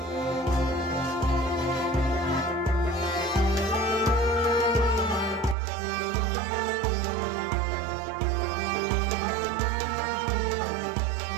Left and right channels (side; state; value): left; drops out; at 5.6 s